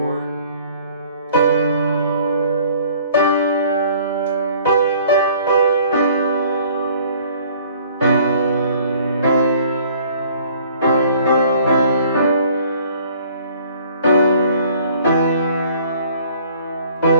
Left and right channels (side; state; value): both; inverted; correlation -0.55